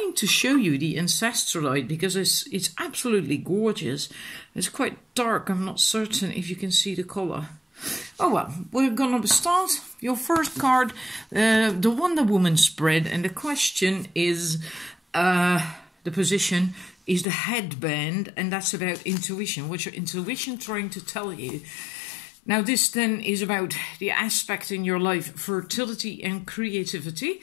to show you the Ancestralite because it's absolutely gorgeous. It's quite dark. I'm not certain if you can see the color. Oh well, we're gonna start. Your first card, the Wonder Woman spread, and the question is, the position is the headband, and that's about intuition. What's your intuition trying to tell you? Now this then is about the aspect in your life, fertility and creativity,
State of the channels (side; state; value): right; drops out; at 17.2 s